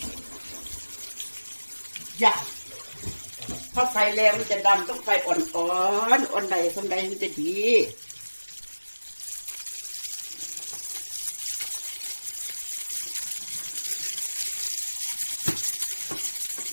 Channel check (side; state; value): both; inverted; correlation -1.00